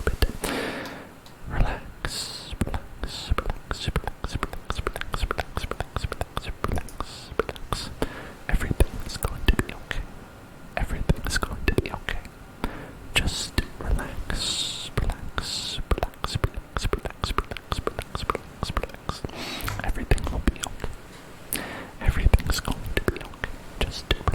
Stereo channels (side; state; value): both; identical; correlation 1.00